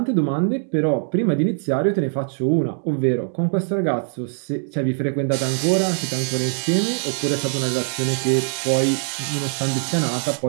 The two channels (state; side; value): silent; left; digital silence